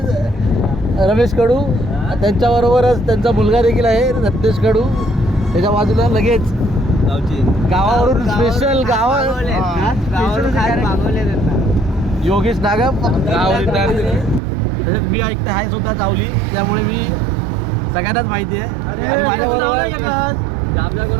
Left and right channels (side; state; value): left; drops out; at 14.4 s